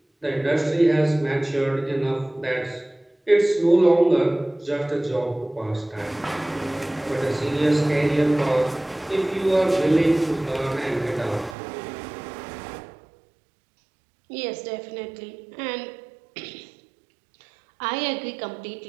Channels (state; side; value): drops out; left; at 11.6 s